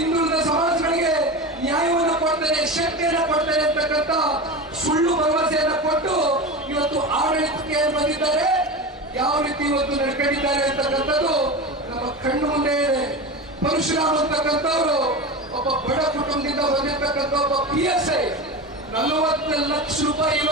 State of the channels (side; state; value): both; normal; correlation 0.25